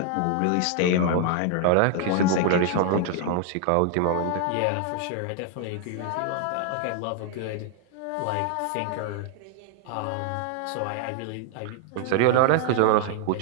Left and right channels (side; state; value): both; different; correlation 0.00